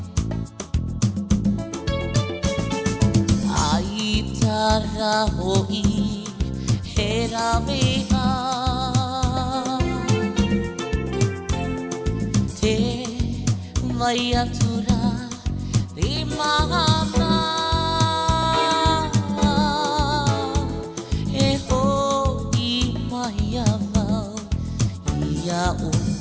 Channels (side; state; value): both; identical; correlation 1.00